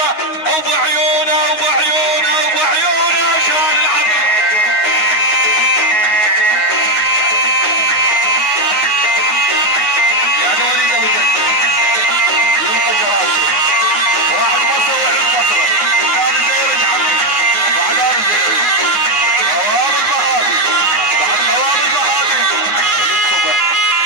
ابو عيونه ابو عيونه ابو عيونه شال العطر. يعني وليد ابو جدة يبقى جراشه واحد بصر وعين بصره. الثاني زيري يا عمي، بعد انا زيري. خواب البهادي، بعد خواب البهادي وليد صبح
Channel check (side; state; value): right; late; 9.5 ms